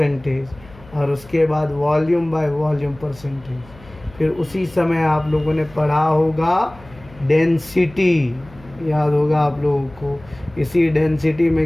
और उसके बाद वॉल्यूम बाय वॉल्यूम परसेंटेज। फिर उसी समय आप लोगों ने पढ़ा होगा डेंसिटी, याद होगा आप लोगों को। इसी डेंसिटी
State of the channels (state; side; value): noise; left; hum, 22 dB below the sound